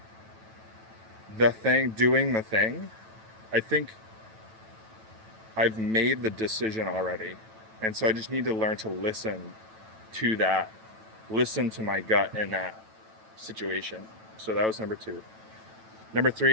the thing, doing the thing, I think I've made the decision already. And so I just need to learn to listen to that, listen to my gut in that situation. So that was number 2. Number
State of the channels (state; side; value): late; left; 9.1 ms